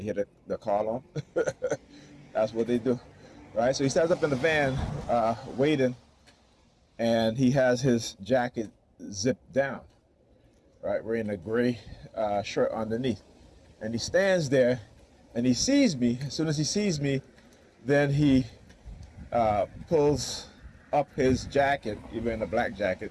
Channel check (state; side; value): identical; both; correlation 1.00